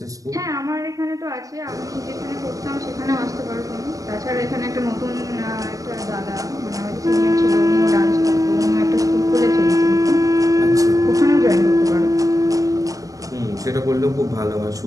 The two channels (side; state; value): left; late; 0.16 ms